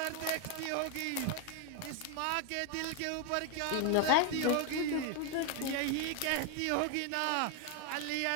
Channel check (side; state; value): both; different; correlation 0.01